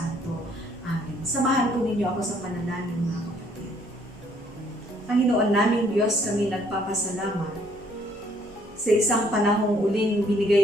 Amen. Samahan po ninyo ako sa panalangin mga kapatid. Panginoon naming Diyos, kami nagpapasalamat sa isang panahong uling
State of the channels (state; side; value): normal; both; correlation 0.64